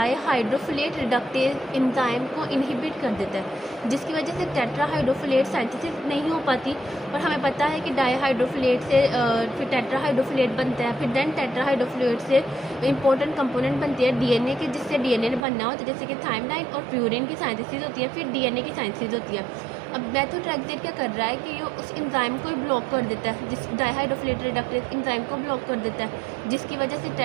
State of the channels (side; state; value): left; drops out; at 15.4 s